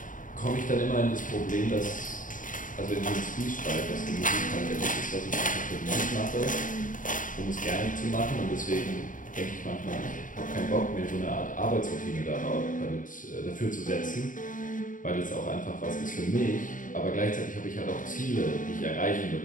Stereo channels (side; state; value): right; late; 0.38 ms